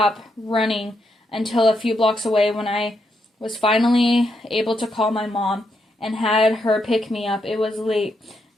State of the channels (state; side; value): normal; both; correlation 0.80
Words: running until a few blocks away when I was finally able to call my mom and had her pick me up. It was late,